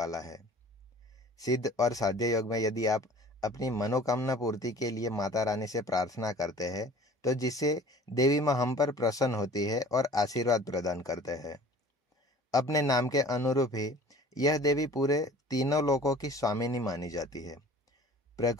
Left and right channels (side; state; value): both; normal; correlation 0.46